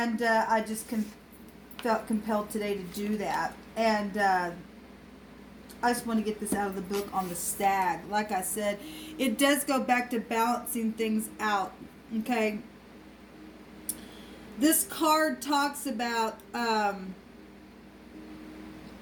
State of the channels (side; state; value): both; identical; correlation 1.00